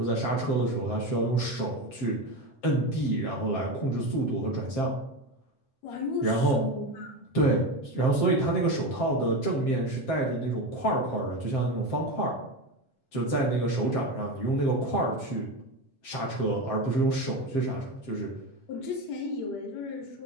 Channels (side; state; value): right; late; 7.6 ms